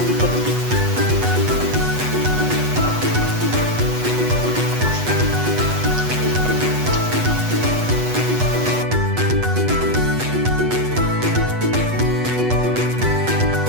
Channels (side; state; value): left; late; 8.1 ms